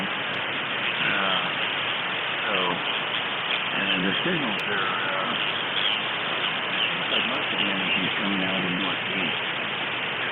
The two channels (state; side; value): identical; both; correlation 1.00